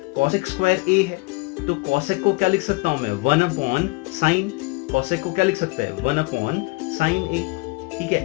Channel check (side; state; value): right; quieter; 26.0 dB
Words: cosec स्क्वायर a है, तो cosec को क्या लिख सकता हूं मैं 1 अपॉन साइन, cosec को क्या लिख सकते हैं 1 अपॉन साइन a, ठीक